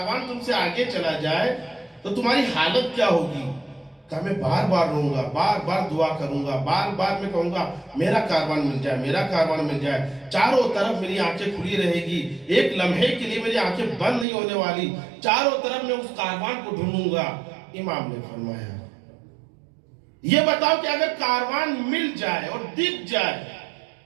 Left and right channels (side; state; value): left; drops out; at 14.2 s